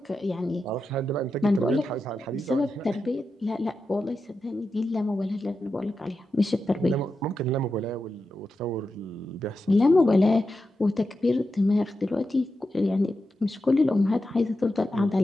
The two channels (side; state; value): both; normal; correlation 0.89